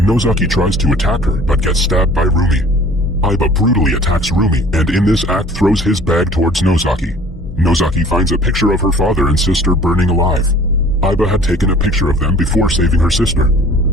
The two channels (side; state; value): both; normal; correlation 0.49